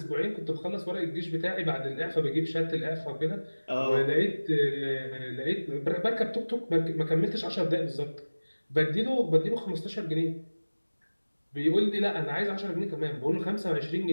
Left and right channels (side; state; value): both; inverted; correlation -1.00